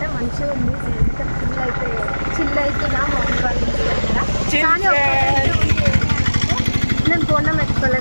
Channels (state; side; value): inverted; both; correlation -1.00